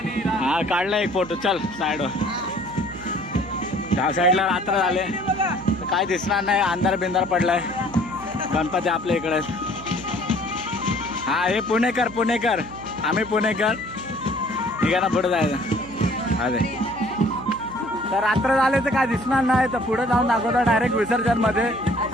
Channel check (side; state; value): right; noise; hum, 16 dB below the sound